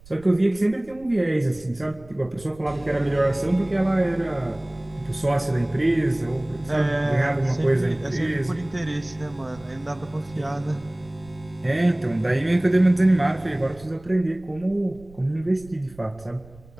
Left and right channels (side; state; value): right; noise; rumble, 23 dB below the sound